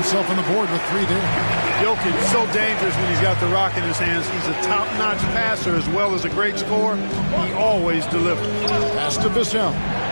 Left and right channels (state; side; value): inverted; both; correlation -1.00